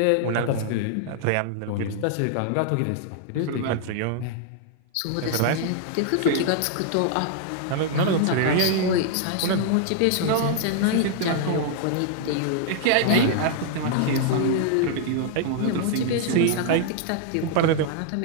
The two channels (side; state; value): both; different; correlation 0.00